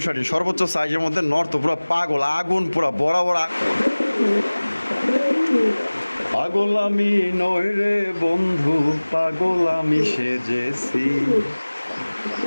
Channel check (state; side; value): inverted; both; correlation -1.00